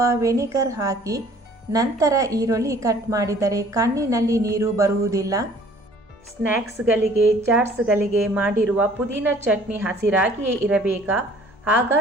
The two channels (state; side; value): normal; both; correlation 0.54